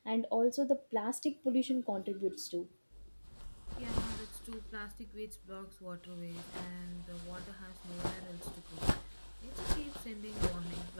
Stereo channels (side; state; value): both; inverted; correlation -1.00